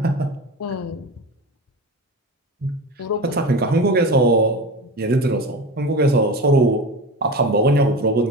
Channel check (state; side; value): normal; both; correlation 0.28